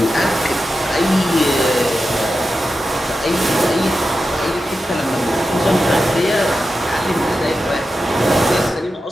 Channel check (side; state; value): both; normal; correlation 0.91